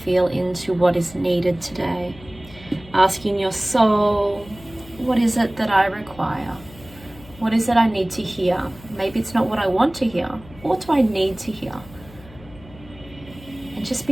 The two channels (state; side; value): noise; left; hum, 21 dB below the sound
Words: into what is needed today. Asking your soul, what is it that I require? What is it I need to hear? Maybe it's not what I want to hear. What do I need to hear? And just